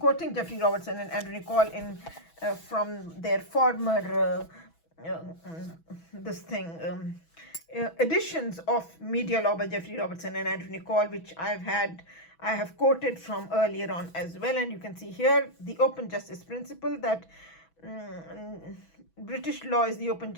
Jeffrey Robertson and Andrew Nicol from their former editions of Media Law by Jeffrey Robertson and Andrew Nicol, which I have quoted from earlier on as well. And you can see here the open justice principle, that British law is the open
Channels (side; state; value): right; late; 6.1 ms